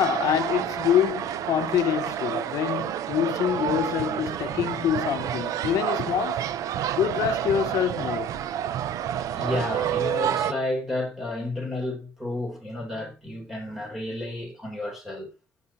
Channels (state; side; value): normal; both; correlation 0.44